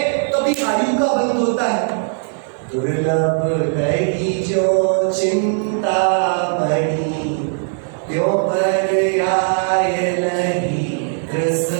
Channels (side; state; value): left; silent; digital silence